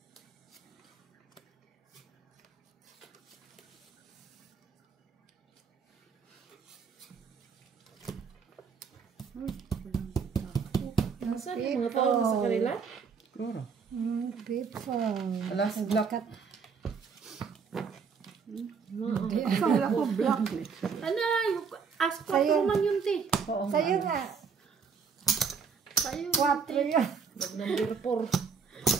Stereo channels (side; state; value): left; quieter; 5.8 dB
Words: Saan yung mga tao na sa kanila? Siguro. People. Alas, black. Akala ko black eh. Ano, ask ko man yun, te. Oo nga. Sa'yo nga. Sa'yo. 4 yun. Mag-number 4.